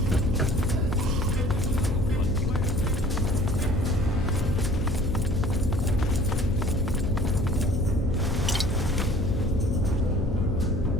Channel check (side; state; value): left; noise; hum, 7 dB below the sound